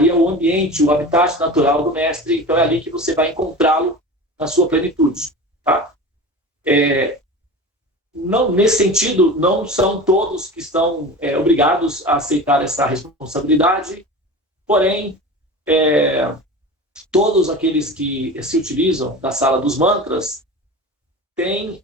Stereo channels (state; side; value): normal; both; correlation 0.32